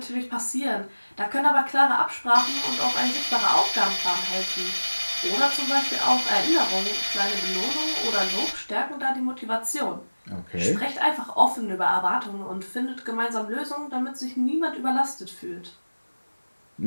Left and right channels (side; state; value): both; inverted; correlation -1.00